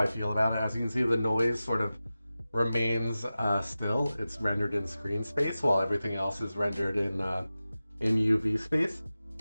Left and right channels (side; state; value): both; inverted; correlation -0.95